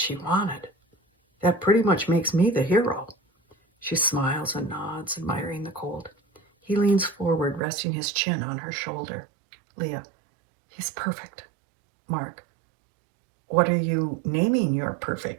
wanted. That pretty much makes me the hero. She smiles and nods, admiring the colt. He leans forward, resting his chin on her shoulder. Leah, he's perfect. Mark, what are you naming your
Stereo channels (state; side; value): drops out; left; at 7.6 s